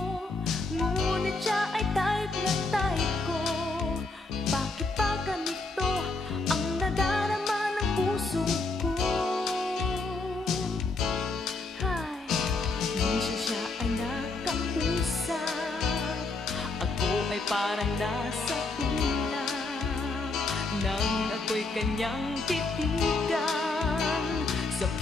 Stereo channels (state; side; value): quieter; right; 3.4 dB